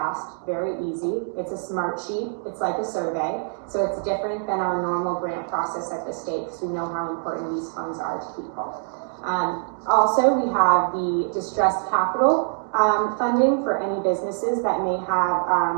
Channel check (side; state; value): left; silent; digital silence